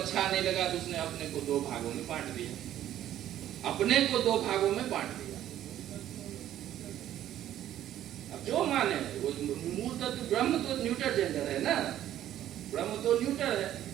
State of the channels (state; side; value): quieter; left; 12.1 dB